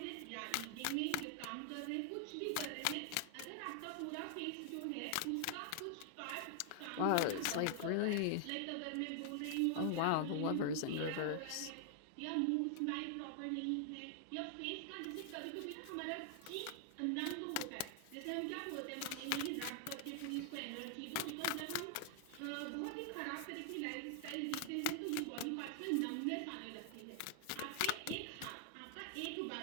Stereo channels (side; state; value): both; different; correlation 0.00